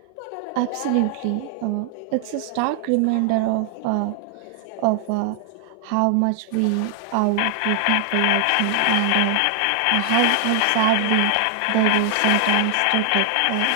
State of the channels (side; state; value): both; different; correlation 0.00